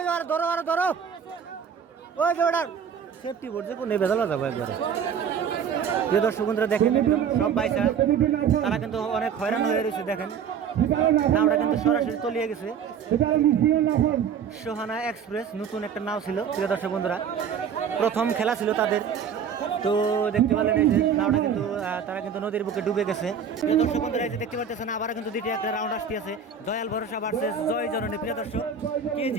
ধরো আরো ধরো ওই যে ওটা সেফটি বোর্ড যে কোন বেদলা যাবো একবারে। প্রিয় দর্শক বন্ধুরা দেখেন একদম সব বাইসা তারা কিন্তু অনেক হয়রান হয়ে রয়েছে। দেখেন নাওটা কিন্তু সরাসরি তলিয়ে গেছে। সোহানা এক্সপ্রেস নতুন একটা নাও ছিল প্রিয় দর্শক বন্ধুরা, প্রথম খেলা ছিল তাদের। তো দেখতে পেলেন এই যে নাওটা কিন্তু তারা কিন্তু নদীর বুকে ডুবে গেছে। প্রিয় দর্শক বন্ধুরা এই যে দেখতে পাচ্ছেন আবার কিন্তু দ্বিতীয় একটা রাউন্ড আসতে আছে দয়াল ভরসা ভার্সেস জয় জননী। প্রিয় দর্শক কে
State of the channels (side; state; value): left; quieter; 7.2 dB